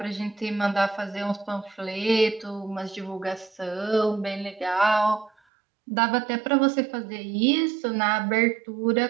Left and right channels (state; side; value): drops out; left; at 5.3 s